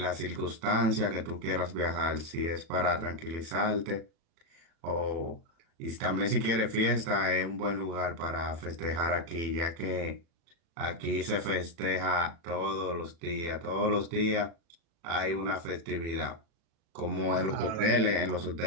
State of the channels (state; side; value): late; left; 36 ms